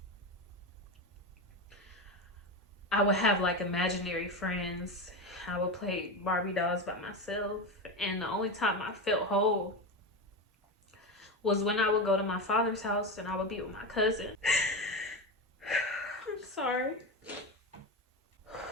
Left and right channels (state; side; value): normal; both; correlation 0.18